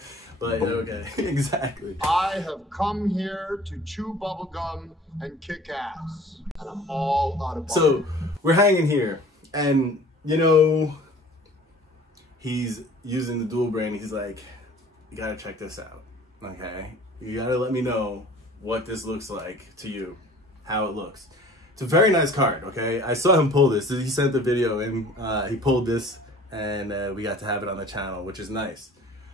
But okay, exactly. I have come here to chew bubblegum and kick ass, and I'm all out of bubblegum. So, we're hanging here, and you know, he's using the dual brain. He's like, you gotta check this out, okay? You gotta let me know what this looks like to you, how it looks. It's a very nice card, okay? I saw him pull this. He sent the video and he pulled this, and we got to have it on the channel, which is nice.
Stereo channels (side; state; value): both; normal; correlation 0.48